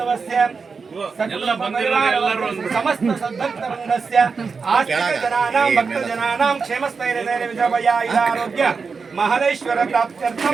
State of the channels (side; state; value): left; quieter; 5.0 dB